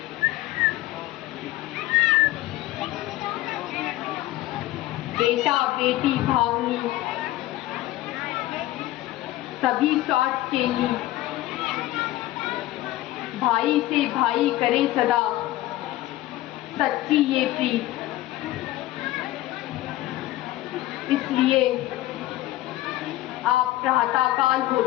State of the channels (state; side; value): quieter; right; 16.2 dB